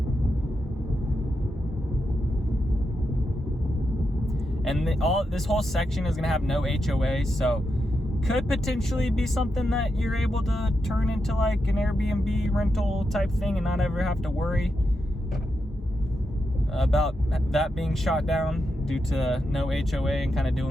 And this whole section is gonna have no HOA, so could potentially be something that you're able to turn into like an Airbnb rental type thing and not ever have to worry about that being shot down due to no HOA and kind of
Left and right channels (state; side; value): normal; both; correlation 0.86